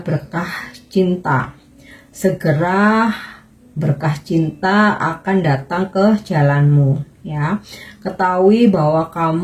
berkah cinta. Segera berkah cinta akan datang ke jalanmu ya. Ketahui bahwa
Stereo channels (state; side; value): identical; both; correlation 1.00